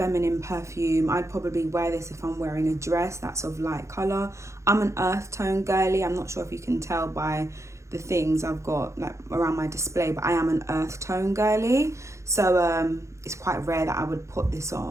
perfume. I'd probably wear this if I'm wearing a dress that's of light colour. I'm an earth tone girly. I'm not sure if you can tell by the things I've got like around my display, but I am an earth tone girly. So it's quite rare that I would put this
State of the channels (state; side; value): late; left; 0.14 ms